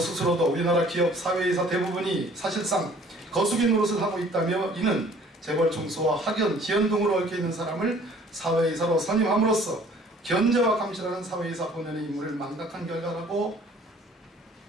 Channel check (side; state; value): both; normal; correlation 0.54